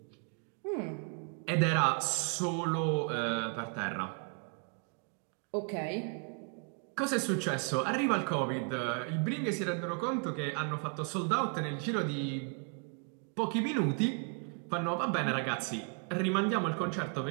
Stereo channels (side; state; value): left; quieter; 38.0 dB